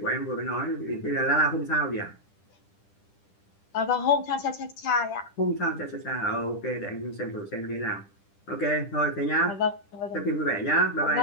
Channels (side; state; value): right; late; 10 ms